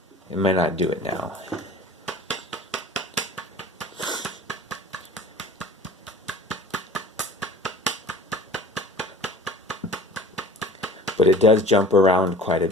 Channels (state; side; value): normal; both; correlation 0.43